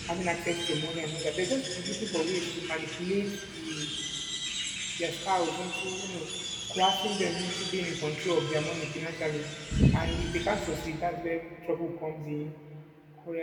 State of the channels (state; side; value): identical; both; correlation 1.00